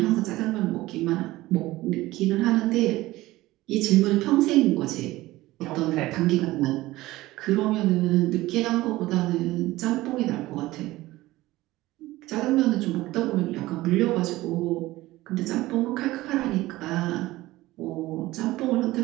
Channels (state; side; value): quieter; left; 17.9 dB